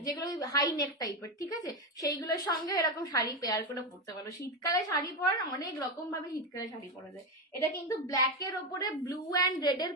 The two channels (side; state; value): both; normal; correlation 0.13